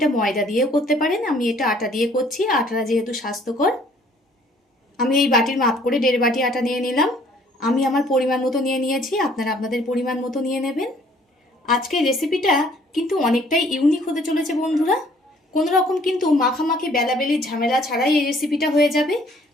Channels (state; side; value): normal; both; correlation 0.59